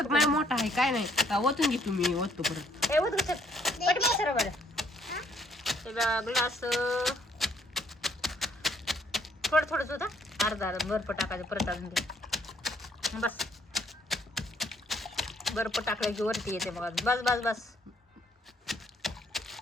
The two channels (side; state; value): both; normal; correlation 0.66